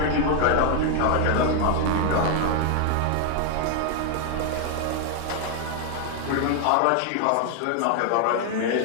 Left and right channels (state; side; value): different; both; correlation 0.00